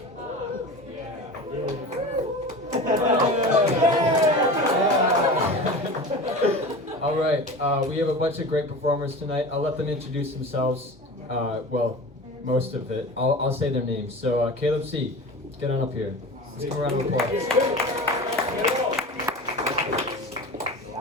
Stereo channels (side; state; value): both; normal; correlation 0.33